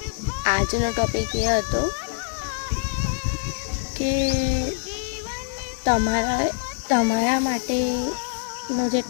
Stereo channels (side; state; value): right; silent; digital silence